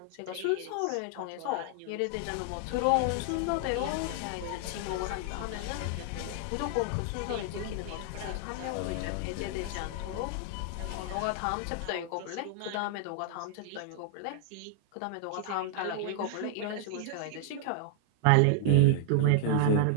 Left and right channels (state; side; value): different; both; correlation -0.01